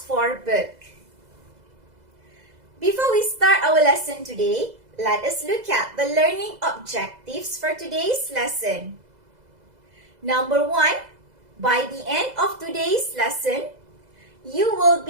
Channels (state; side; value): late; left; 2.0 ms